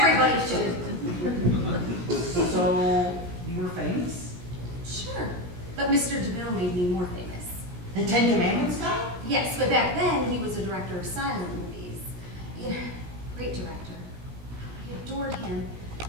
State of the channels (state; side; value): late; left; 17 ms